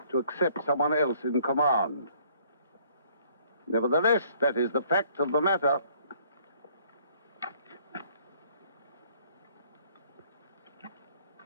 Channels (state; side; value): inverted; both; correlation -0.60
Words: to accept someone else in command. Nevertheless, that is the fact of the matter.